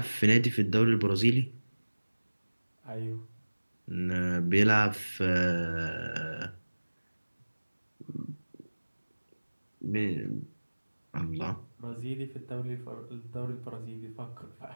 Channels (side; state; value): both; inverted; correlation -1.00